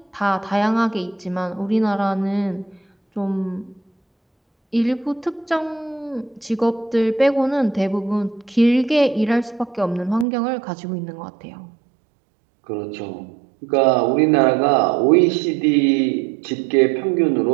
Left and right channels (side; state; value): left; drops out; at 10.2 s